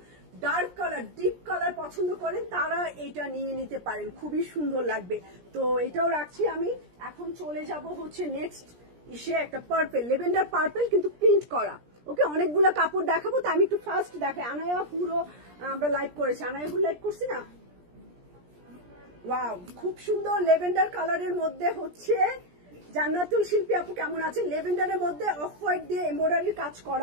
ডার্ক কালার, ডিপ কালার পছন্দ করেন তারা এটা নিয়ে নিতে পারেন, খুবই সুন্দর লাগবে। তো এটাও রাখছি আমি। এখন চলে যাব হচ্ছে নেক্সট ইসে, একটা পার্পেল, লেভেন্ডার পার্পেল, কিন্তু প্রিন্ট করা। ওকে, অনেকগুলো কাপড় দেখাবো, তো আমি একটু ফার্স্ট দেখাই। আনায়া পুরো আমরা লাইভ করেছি, আনায়া পুরো লাইভ করছি না? ওয়াও, খুব সুন্দর লেভেন্ডার কালারের মধ্যে হচ্ছে জান্নাতুল শিল্পী আপু কেমন আছেন? লেভেন্ডারের মধ্যে অফ হোয়াইট দিয়ে এমব্রয়ডারির কাজ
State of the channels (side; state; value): left; late; 17 ms